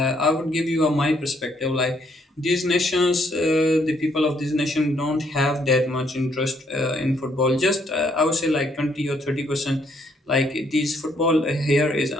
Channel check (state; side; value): normal; both; correlation 0.70